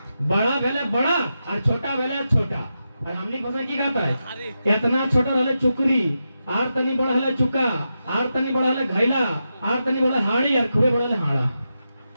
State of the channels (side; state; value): both; inverted; correlation -0.88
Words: बड़ा वाला बड़ा और छोटा वाला छोटा। और हमने भाषा की कहता है इतना छोटा रहले चुकरी, आर तनी बड़ा हले चुका, आर तनी बड़ा हले घैला, आर तनी बड़ा हाड़ी और खूबे बड़ा हले हाड़ा।